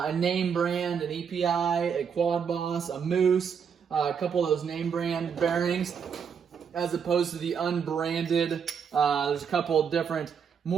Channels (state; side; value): quieter; left; 7.0 dB